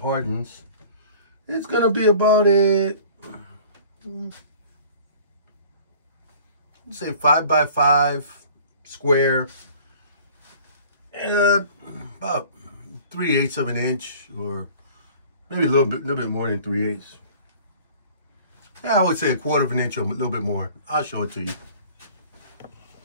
It's gonna be about say 5 by 5 square, about 3/8 of an inch, or maybe a little bit more than 3/8. Yeah, I would say 1/4 of an inch or a little bit more. I'll show it to you.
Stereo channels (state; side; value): inverted; both; correlation -0.48